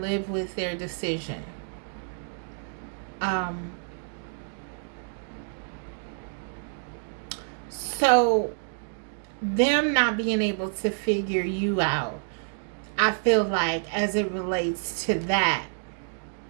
live with their decision. So them not being able to figure you out, I feel like as it relates to that,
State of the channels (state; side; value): silent; left; 59 dB below the other